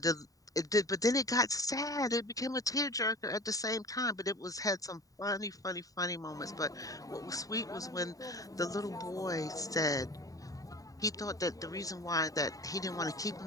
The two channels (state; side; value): late; right; 0.17 ms